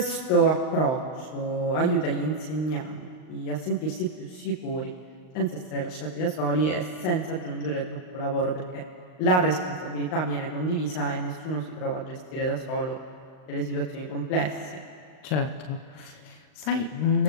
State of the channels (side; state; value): right; late; 39 ms